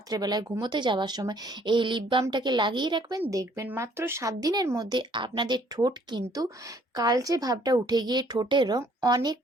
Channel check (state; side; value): normal; both; correlation 0.61